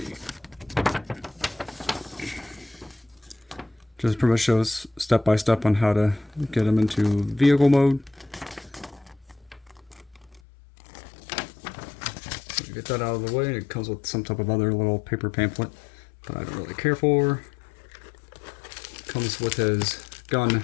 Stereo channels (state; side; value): drops out; right; at 10.4 s